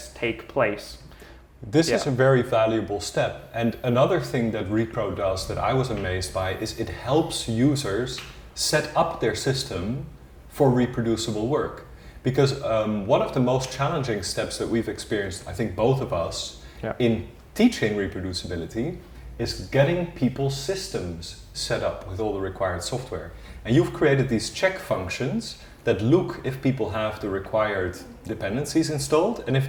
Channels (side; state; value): both; identical; correlation 1.00